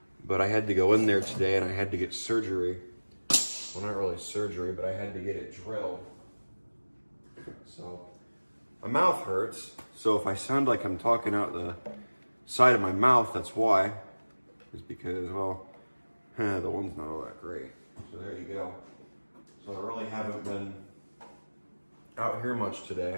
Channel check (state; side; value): inverted; both; correlation -1.00